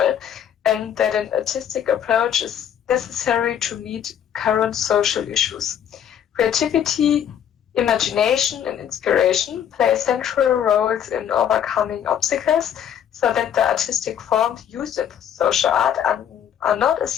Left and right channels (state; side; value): quieter; right; 9.3 dB